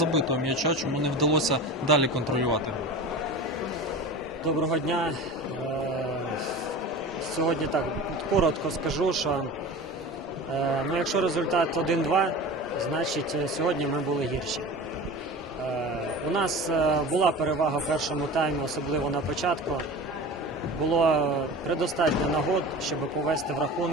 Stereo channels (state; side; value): normal; both; correlation 0.34